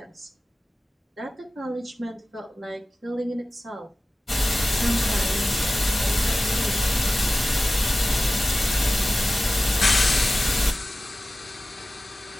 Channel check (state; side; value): normal; both; correlation 0.96